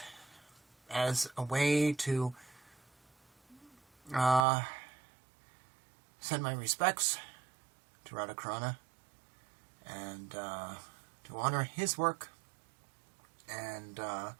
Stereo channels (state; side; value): drops out; left; at 4.4 s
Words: as a way to send my respects to Radha Carana and to honor his work and